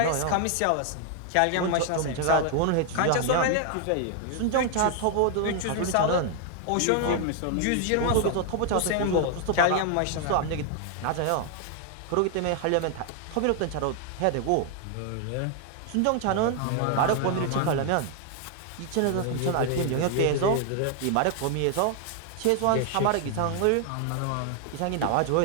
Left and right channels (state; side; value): different; both; correlation 0.00